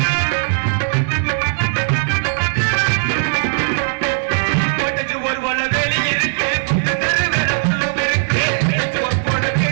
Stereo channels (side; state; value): left; silent; digital silence